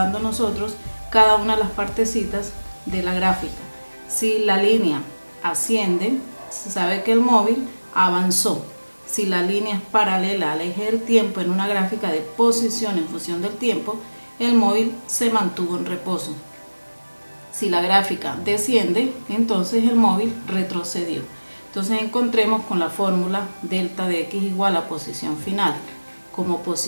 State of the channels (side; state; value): both; inverted; correlation -1.00